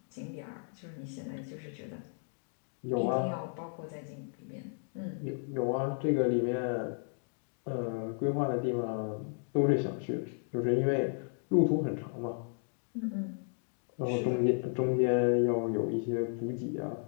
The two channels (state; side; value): silent; right; 55 dB below the other